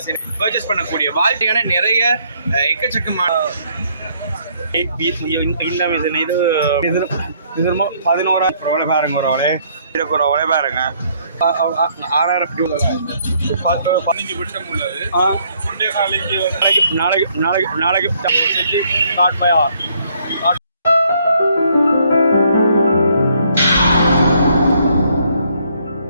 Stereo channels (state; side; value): inverted; both; correlation -0.67